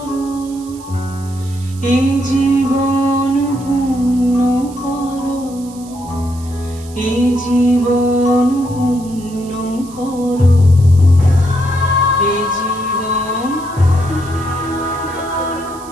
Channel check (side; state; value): right; noise; hiss, 21 dB below the sound